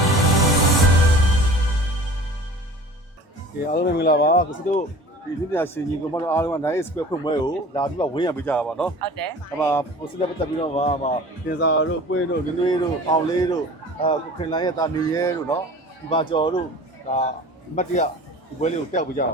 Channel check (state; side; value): normal; both; correlation 0.42